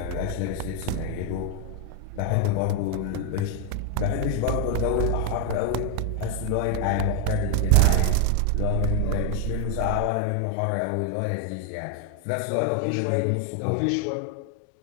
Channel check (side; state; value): both; different; correlation 0.01